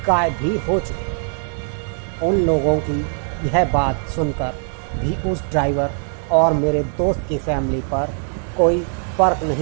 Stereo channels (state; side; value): silent; left; 59 dB below the other